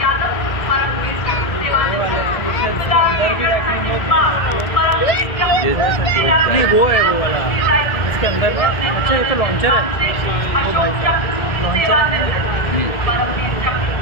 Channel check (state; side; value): late; right; 1.8 ms